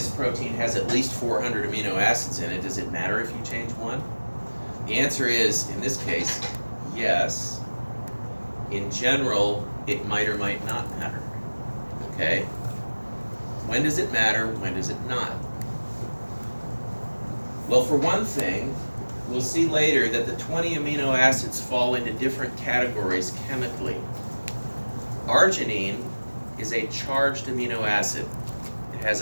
protein has at least 400 amino acids in it. Does it matter if you change one? The answer is, in this case, yes. In general, it might or might not matter. Okay? When does it matter? When does it not? Well, for one thing, we'll see later that the 20 amino acids fall into different categories chemically. Arginine is a charged amino acid. It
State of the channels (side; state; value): both; inverted; correlation -1.00